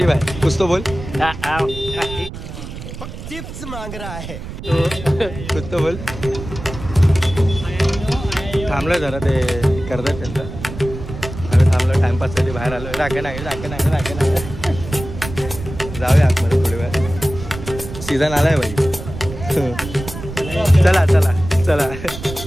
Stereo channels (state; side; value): noise; right; rumble, 10 dB below the sound